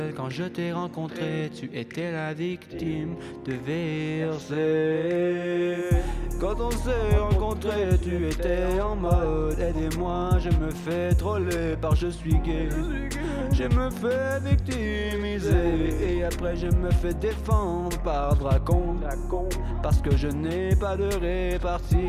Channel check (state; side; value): identical; both; correlation 1.00